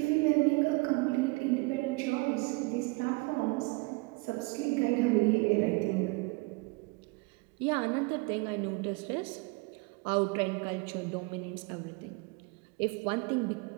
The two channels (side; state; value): left; quieter; 26.8 dB